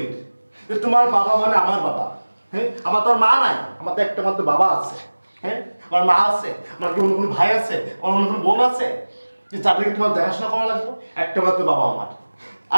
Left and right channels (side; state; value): both; inverted; correlation -1.00